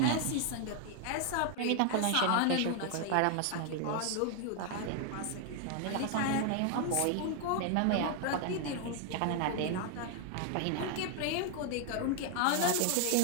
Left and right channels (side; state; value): both; different; correlation 0.00